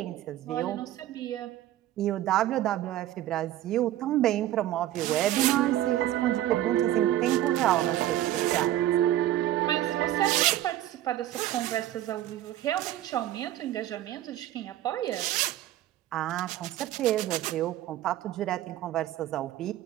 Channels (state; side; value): quieter; left; 13.5 dB